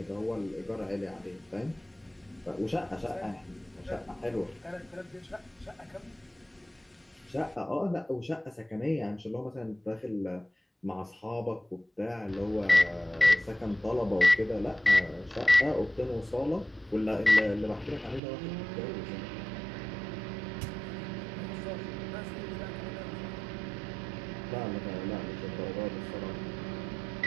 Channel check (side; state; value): left; drops out; at 18.2 s